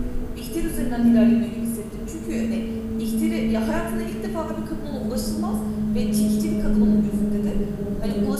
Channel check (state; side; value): identical; both; correlation 1.00